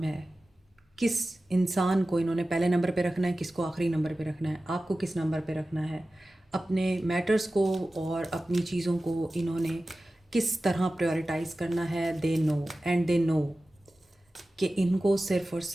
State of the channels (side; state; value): both; normal; correlation 0.95